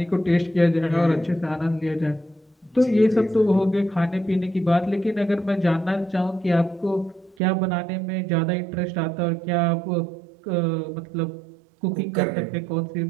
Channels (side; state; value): left; drops out; at 7.4 s